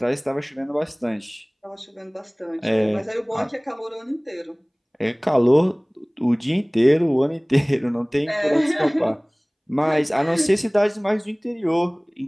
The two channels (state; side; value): identical; both; correlation 1.00